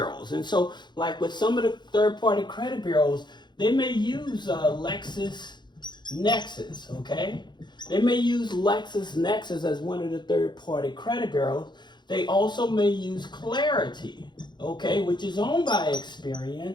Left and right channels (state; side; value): late; right; 0.21 ms